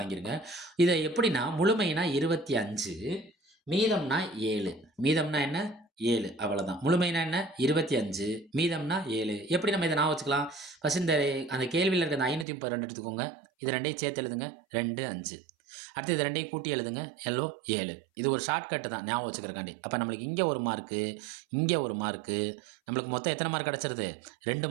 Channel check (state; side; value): drops out; left; at 12.5 s